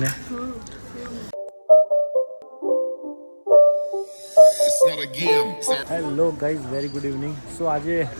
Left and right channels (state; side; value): inverted; both; correlation -1.00